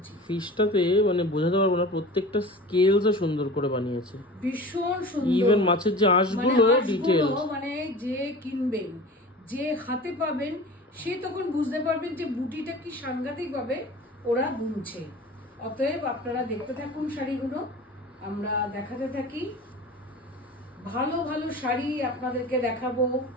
ফিশটাতে মানে বোঝাতে পারবো না, প্রত্যেকটা স্কেলসও সুন্দর করে বানিয়েছে, ভীষণ সুন্দর। ইভেন মাছের যে আঁশগুলো ডিটেইল, মানে যে কিনবেন, যে হাতে পাবেন, সে তখন বুঝতে পারবেন যে বুটিটা কি সাংঘাতিক ভাবে ওরা বুনছে। অতএব আপনারা দেখতে থাকুন শাড়িগুলো, আমরা দেখাতে থাকি। ভালো ভালো শাড়ি আপনাদেরকে দেখাবো,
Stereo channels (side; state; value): both; normal; correlation 0.37